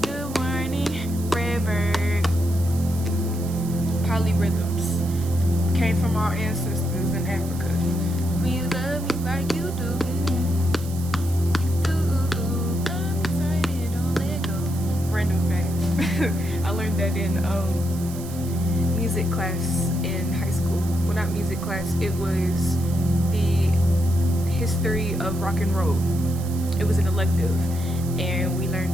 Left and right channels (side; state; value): right; noise; hiss, 15 dB below the sound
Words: Good morning, red bird. Polyrhythms came from our ancestors in Africa. When you love me like you do, you do. Love me tight and don't let go. I learned that in music class in high school. Well, not music class. It was the history of rock and roll. It was an elective, and we learned